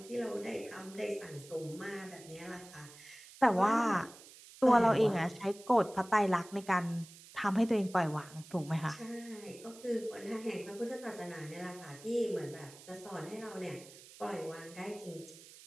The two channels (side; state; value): right; noise; hiss, 19 dB below the sound